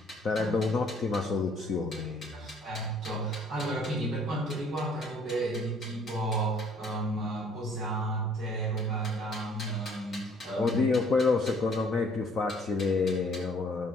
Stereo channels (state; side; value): normal; both; correlation 0.59